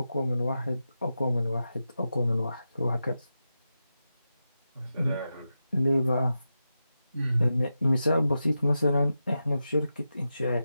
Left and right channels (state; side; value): inverted; both; correlation -0.90